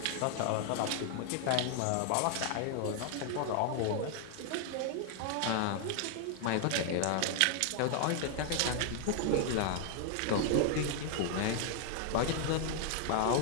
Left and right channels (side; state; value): both; different; correlation 0.00